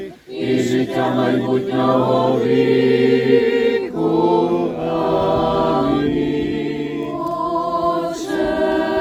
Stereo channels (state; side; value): identical; both; correlation 1.00